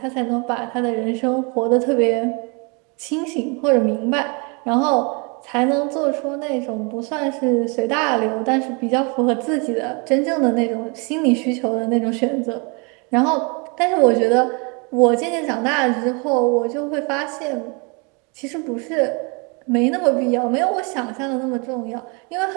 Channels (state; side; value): quieter; left; 32.2 dB